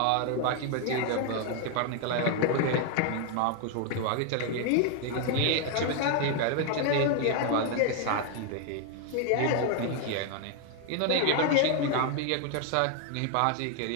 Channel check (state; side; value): different; both; correlation 0.00